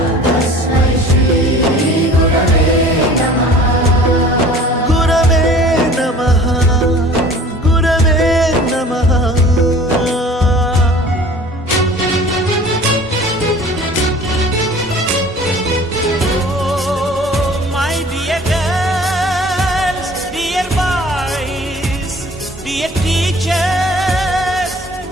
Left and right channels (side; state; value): both; normal; correlation 0.47